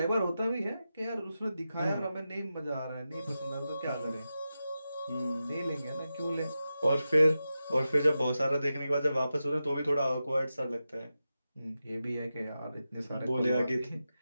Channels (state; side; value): inverted; both; correlation -0.91